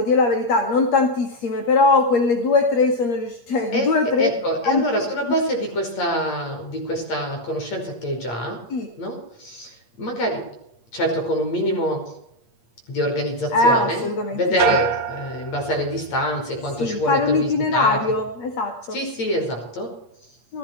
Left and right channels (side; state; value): right; late; 8.5 ms